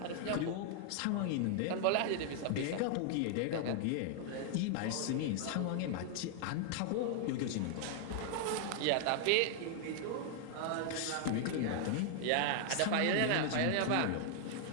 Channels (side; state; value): both; different; correlation 0.00